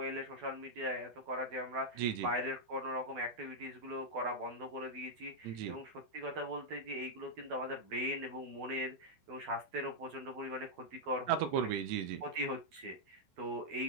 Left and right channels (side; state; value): left; late; 12 ms